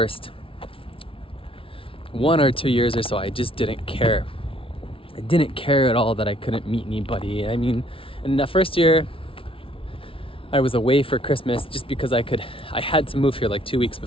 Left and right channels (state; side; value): late; right; 0.26 ms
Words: 1 or 2 years or so, I just didn't care. I didn't care at all that I couldn't meet anybody. I mean, in that first year, I was away for Christmas just because I had to move here like 2 weeks